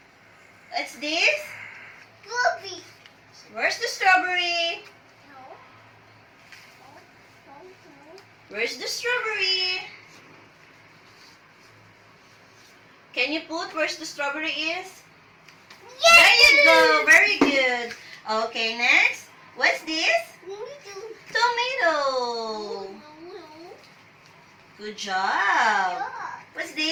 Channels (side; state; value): both; identical; correlation 1.00